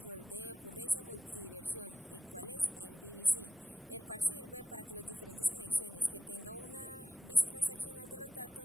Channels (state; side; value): normal; both; correlation 0.87